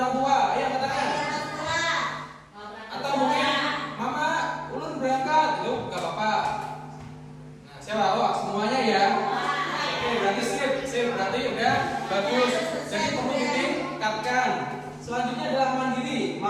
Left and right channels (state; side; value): identical; both; correlation 1.00